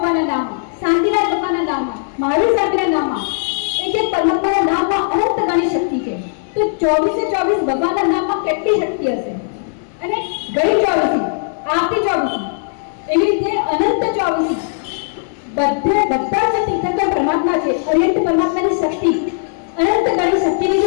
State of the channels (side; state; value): right; silent; digital silence